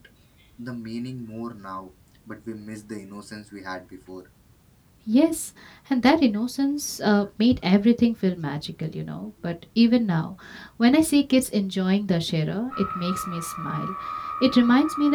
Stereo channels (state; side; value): identical; both; correlation 1.00